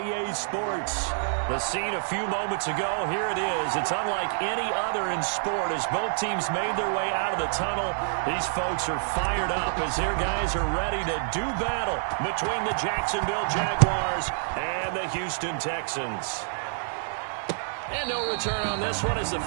Sports. The scene a few moments ago, here it is. It's unlike any other in sport as both teams made their way out of the tunnel. These folks are fired up as their guys are ready to do battle between the Jacksonville Jaguars and the Houston Texans. And no return on this one as the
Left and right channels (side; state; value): left; silent; 60 dB below the other